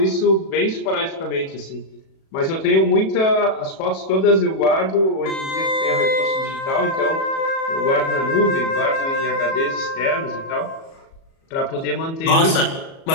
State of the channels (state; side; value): late; right; 37 ms